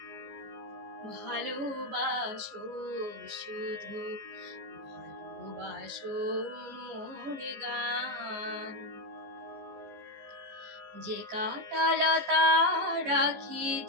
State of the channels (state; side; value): late; left; 14 ms